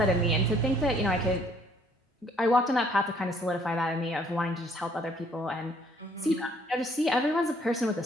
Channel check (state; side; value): normal; both; correlation 0.63